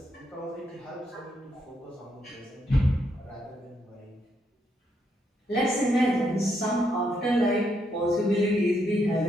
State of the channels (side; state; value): both; normal; correlation 0.77